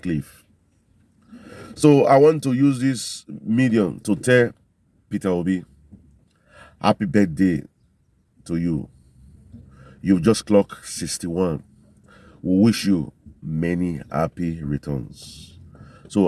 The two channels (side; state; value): both; identical; correlation 1.00